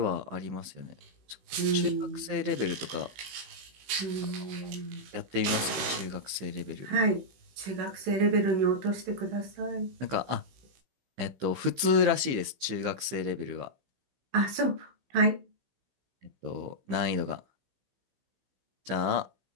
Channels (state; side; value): late; left; 16 ms